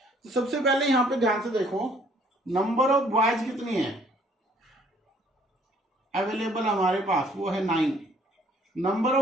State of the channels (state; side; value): normal; both; correlation 0.61